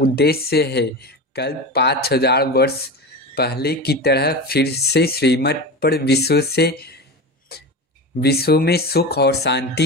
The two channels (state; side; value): normal; both; correlation 0.25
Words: है कल 5000 वर्ष पहले की तरह फिर से श्रीमत पर विश्व में सुख और